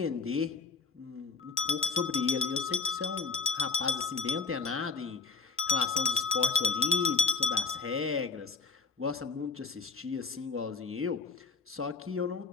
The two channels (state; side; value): quieter; right; 4.9 dB